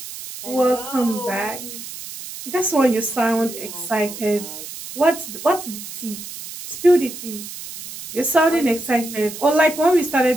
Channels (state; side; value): noise; right; hiss, 11 dB below the sound